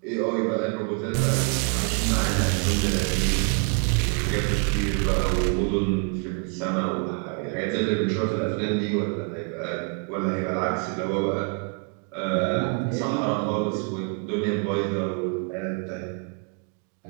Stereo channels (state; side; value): quieter; left; 38.6 dB